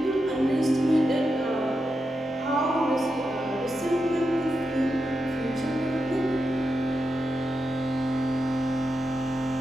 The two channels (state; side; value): normal; both; correlation 0.88